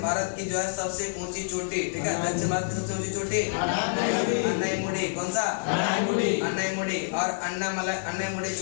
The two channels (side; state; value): right; silent; digital silence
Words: भारत की जो है सबसे ऊंची चोटी। ठीक है, दक्षिण भारत की सबसे ऊंची चोटी अन्नाईमुडी। कौन सा? अन्नाईमुडी। और अन्नाईमुडी